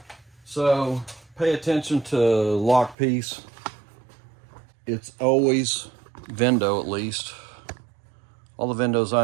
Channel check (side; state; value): left; drops out; at 3.0 s